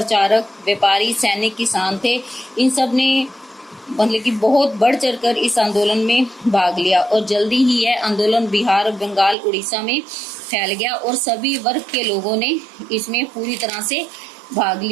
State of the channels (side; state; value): left; drops out; at 9.3 s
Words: व्यापारी, सैनिक, किसान थे। इन सब ने मतलब कि बहुत बढ़ चढ़कर इस आंदोलन में भाग लिया और जल्दी ही यह आंदोलन बिहार, बंगाल, उड़ीसा में फैल गया और सभी वर्ग के लोगों ने इसमें पूरी तरह से भाग